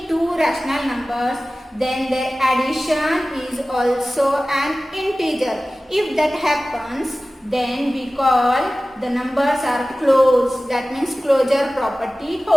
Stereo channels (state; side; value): normal; both; correlation 0.97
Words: two rational numbers, then their addition is also an integer. If that happens, then we call the numbers are closed. That means closure property